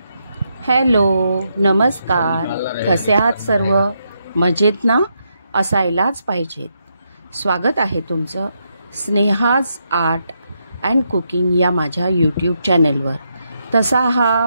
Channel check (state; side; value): inverted; both; correlation -0.80